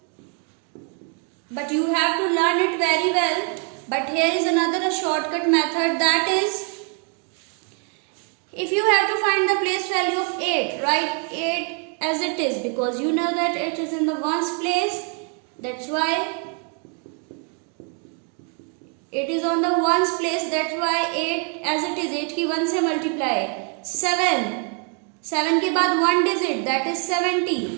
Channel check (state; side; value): quieter; left; 38.3 dB